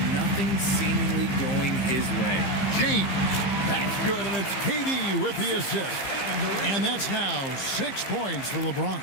Nothing seemingly going his way. James. That's good, and it's KD with the assist. And that's now 6 points for LeBron.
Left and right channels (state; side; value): late; right; 15 ms